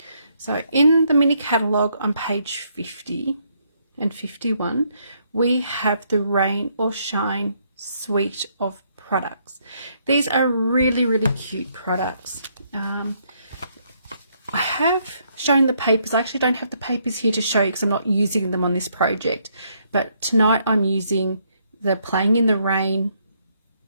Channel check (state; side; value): inverted; both; correlation -0.72